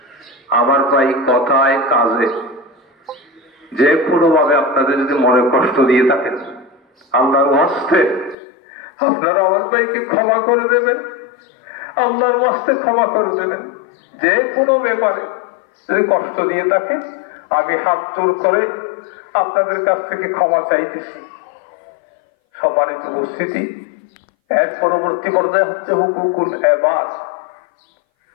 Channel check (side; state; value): right; drops out; at 8.3 s